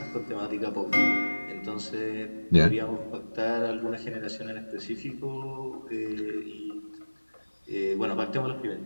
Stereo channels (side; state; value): both; inverted; correlation -1.00